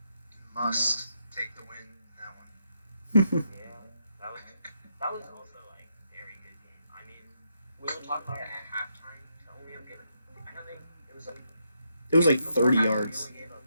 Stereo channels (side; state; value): both; inverted; correlation -0.79